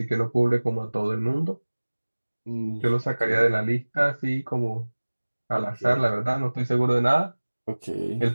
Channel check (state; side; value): inverted; both; correlation -1.00